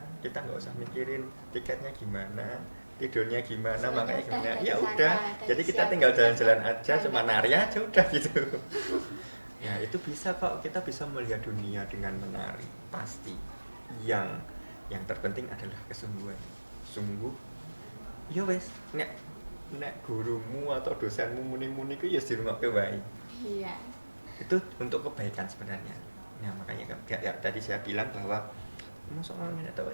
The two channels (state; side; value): inverted; both; correlation -1.00